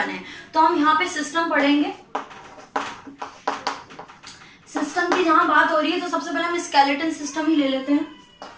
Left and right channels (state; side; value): identical; both; correlation 1.00